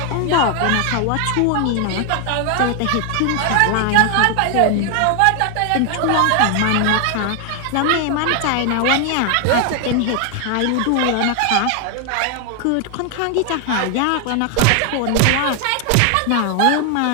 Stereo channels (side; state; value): both; different; correlation 0.00